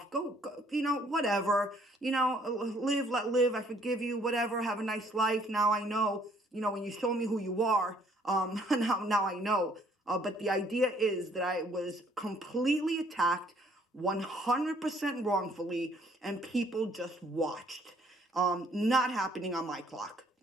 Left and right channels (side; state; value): both; normal; correlation 0.63